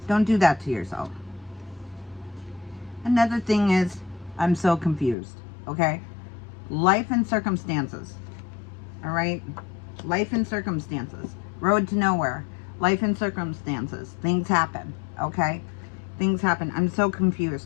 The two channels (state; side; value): drops out; right; at 5.2 s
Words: Don't do that to yourself. Another thing is, I'm so confused, okay? Life and circumstances, all right? Life and circumstances. Road to nowhere. Life and circumstances. Things happen, okay? Things happen. I'm so